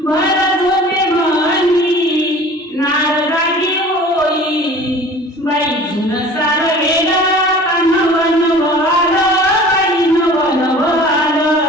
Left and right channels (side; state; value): both; normal; correlation 0.44